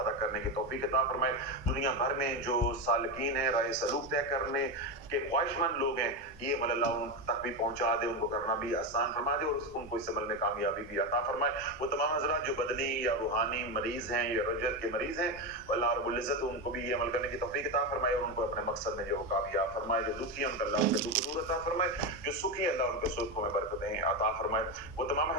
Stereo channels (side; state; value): both; normal; correlation 0.14